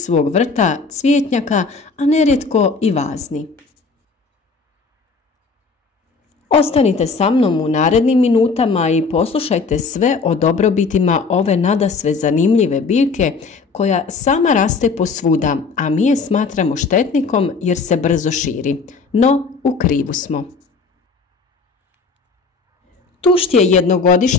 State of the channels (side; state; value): right; quieter; 4.5 dB